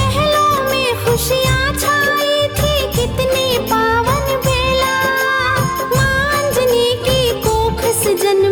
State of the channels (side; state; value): both; identical; correlation 1.00